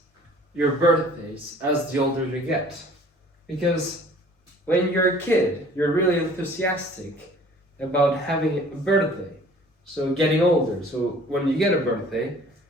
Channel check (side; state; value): both; normal; correlation 0.51